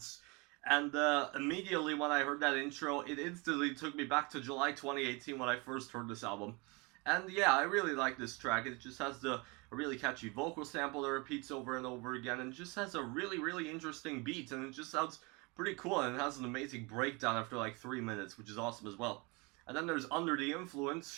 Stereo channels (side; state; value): left; quieter; 28.0 dB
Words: and immediately when I heard that intro, it instantly took me back to July 2018 when I first heard this album. And yeah, I really like this track. It just has a really catchy vocal sample that repeats over and over again, and just has a really interesting beat, and it just sounds pretty cool. And it has an amazing breakdown after like 3 minutes, which is awesome as well. And then there's Under the Influence,